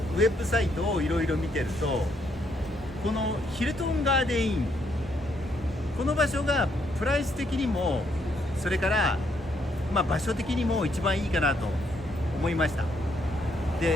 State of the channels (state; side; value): normal; both; correlation 0.73